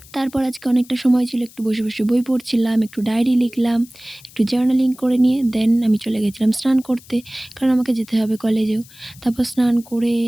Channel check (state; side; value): noise; left; hiss, 23 dB below the sound